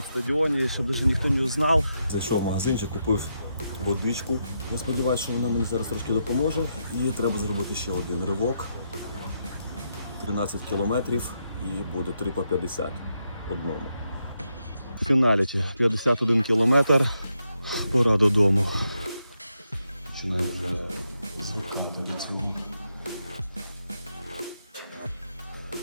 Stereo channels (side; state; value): both; inverted; correlation -0.82